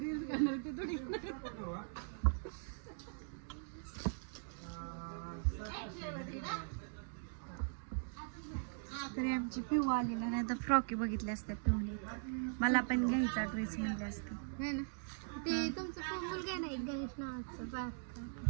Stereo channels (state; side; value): silent; left; digital silence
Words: रील्स करणार ते थोडी. तरी आमची पिऊ आलेला नाही तर फ्रॉकी बघितल्या असत्या पिऊने. मला पण घ्यायचा ड्रेस म्हणले असते. है ना. ते तुमचा मुलगा आहे ना एक गणेश नावाचा